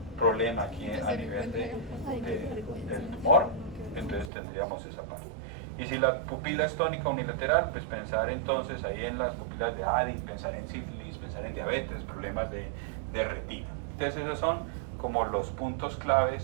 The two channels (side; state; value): left; drops out; at 4.3 s